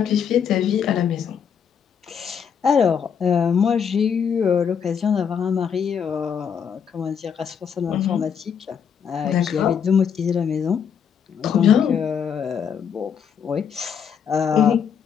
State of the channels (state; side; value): quieter; right; 7.4 dB